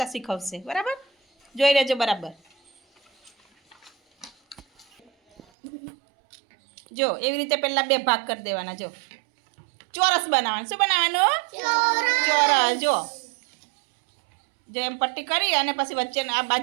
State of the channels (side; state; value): left; drops out; at 5.4 s